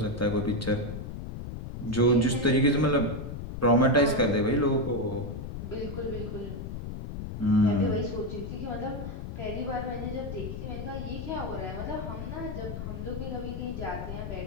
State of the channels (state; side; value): noise; left; rumble, 7 dB below the sound